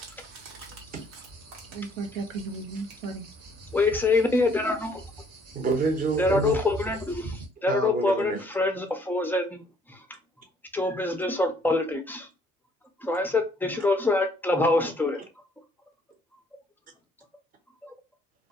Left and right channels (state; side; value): normal; both; correlation 0.63